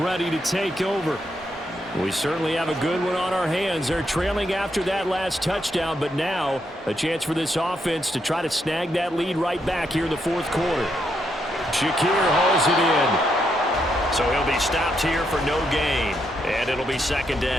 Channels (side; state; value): both; normal; correlation 0.79